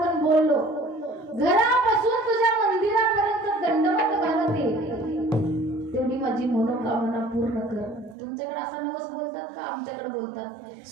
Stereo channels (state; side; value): drops out; left; at 8.2 s